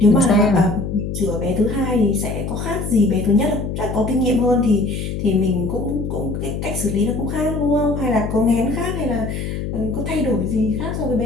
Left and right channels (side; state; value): left; noise; hum, 4 dB below the sound